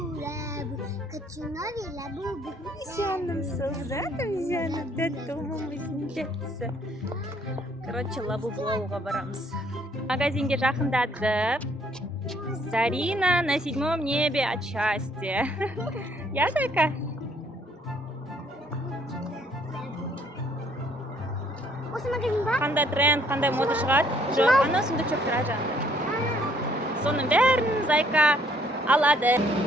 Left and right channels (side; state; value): both; normal; correlation 0.64